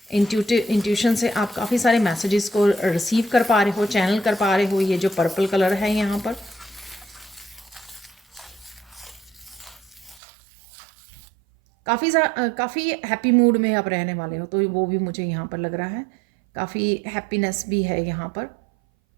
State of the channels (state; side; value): drops out; left; at 10.2 s